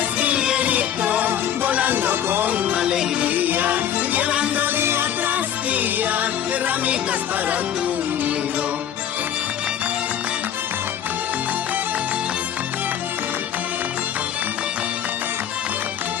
Guillerito, volando con alegría, llevando día tras día ramitas para tu nido?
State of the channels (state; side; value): quieter; right; 9.8 dB